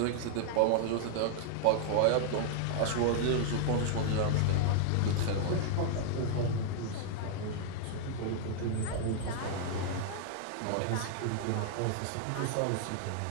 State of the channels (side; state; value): both; different; correlation -0.01